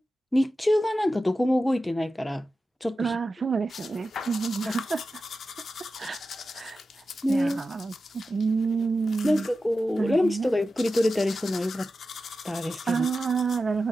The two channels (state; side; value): normal; both; correlation 0.92